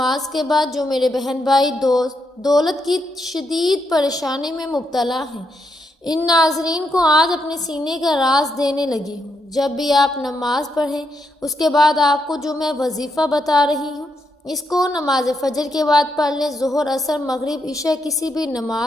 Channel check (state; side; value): normal; both; correlation 0.80